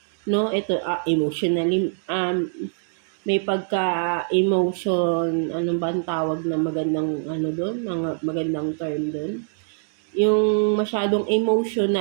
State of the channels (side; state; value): left; silent; digital silence